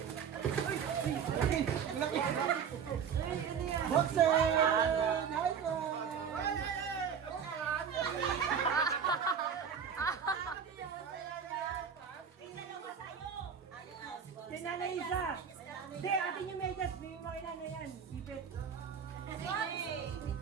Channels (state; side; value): quieter; left; 7.2 dB